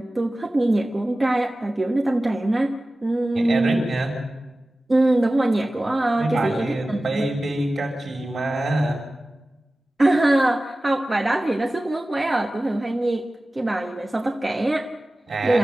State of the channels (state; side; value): normal; both; correlation 0.96